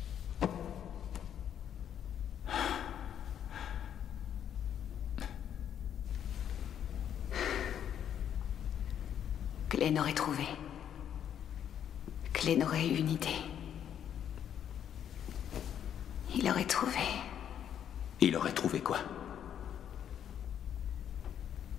Glenn aurait trouvé. Glenn aurait eu une idée. Il aurait trouvé. Il aurait trouvé quoi?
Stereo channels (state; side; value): quieter; right; 9.4 dB